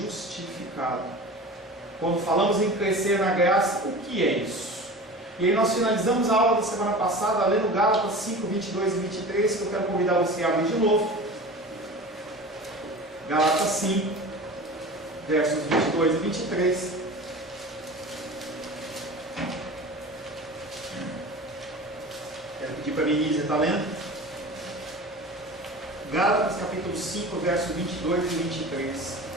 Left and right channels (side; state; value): both; normal; correlation 0.35